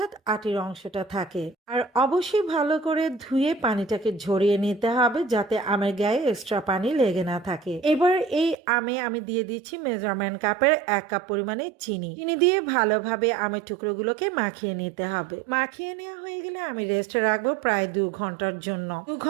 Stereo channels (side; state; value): left; drops out; at 8.6 s